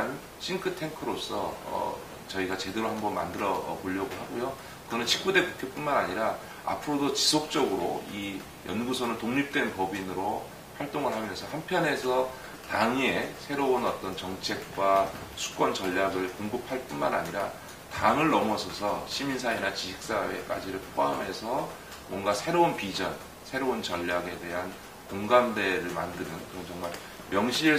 싱크탱크로서 저희가 제대로 한번 만들어 보려고 하고요. 그거는 19대 국회뿐만 아니라 앞으로도 지속적으로 이 연구소는 독립된 법인으로 활동을 하면서 한편에서 당의 새로운 어떤 정책과 수권 전략을 공급할 뿐만 아니라 당을 넘어서서 시민사회나 지식사회까지를 포함해서 뭔가 새로운 비전, 새로운 전략에 대한 공감대를 만드는 그런 정말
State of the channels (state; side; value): identical; both; correlation 1.00